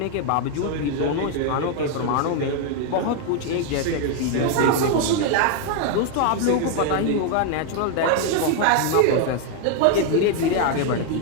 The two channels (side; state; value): both; different; correlation 0.00